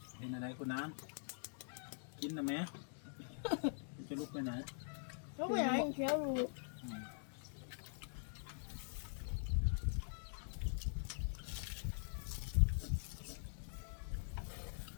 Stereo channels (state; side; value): silent; right; digital silence